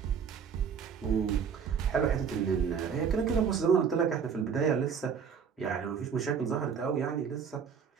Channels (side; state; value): left; quieter; 6.8 dB